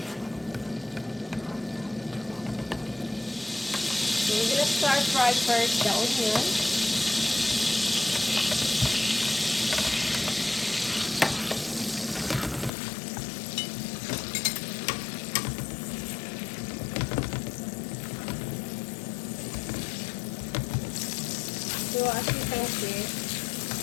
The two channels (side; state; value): right; drops out; at 12.7 s